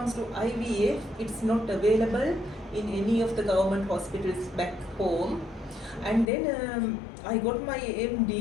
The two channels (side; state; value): right; drops out; at 6.3 s